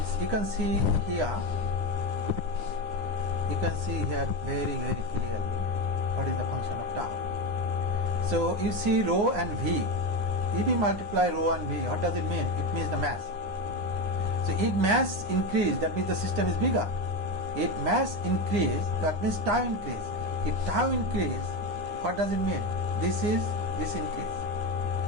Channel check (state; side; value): late; left; 9.7 ms